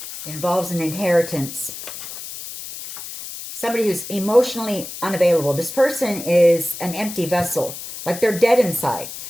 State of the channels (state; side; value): noise; left; hiss, 10 dB below the sound